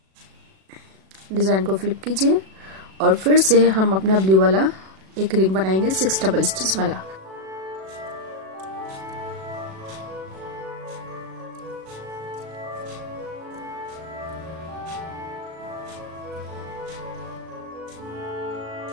डिजाइन को फ्लिप कीजिए और फिर से हम अपना ब्लू वाला एक रिंग बनाएंगे 6 डबल स्टिच वाला।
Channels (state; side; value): late; left; 37 ms